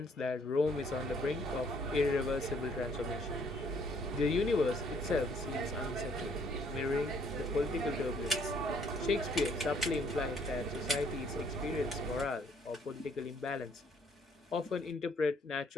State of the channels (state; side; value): normal; both; correlation 0.64